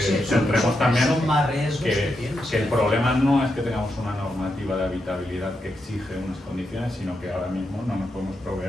centremos también que el problema no es que tengamos una normativa de habitabilidad que exige unas condiciones, sino que ahora mismo no nos podemos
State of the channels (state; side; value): normal; both; correlation 0.84